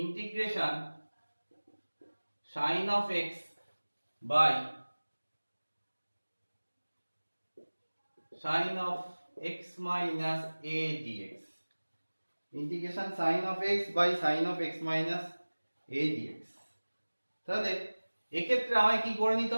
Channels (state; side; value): inverted; both; correlation -1.00